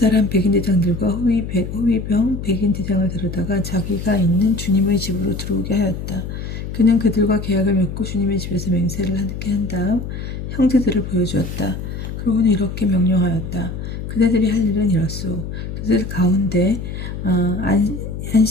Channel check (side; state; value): left; noise; hum, 7 dB below the sound